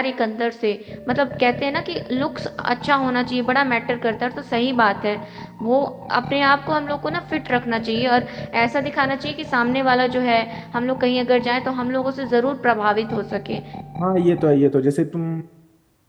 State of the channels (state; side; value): identical; both; correlation 1.00